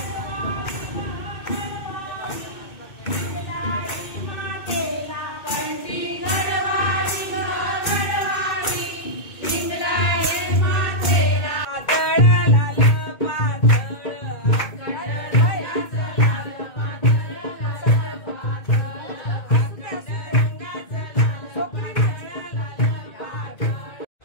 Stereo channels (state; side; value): late; right; 2.2 ms